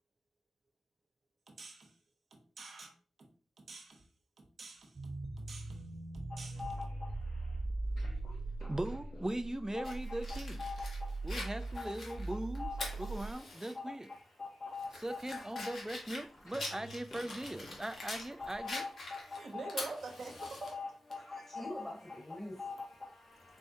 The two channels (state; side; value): normal; both; correlation 0.92